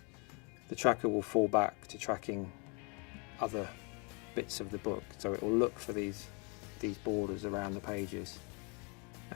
the tracker will fall back to tracking other bits of the book. So it will look for these borders around the pages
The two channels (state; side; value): quieter; right; 33.1 dB